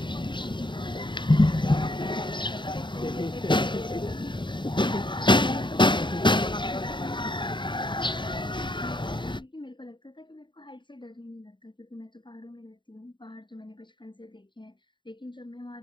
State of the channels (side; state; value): right; late; 0.23 ms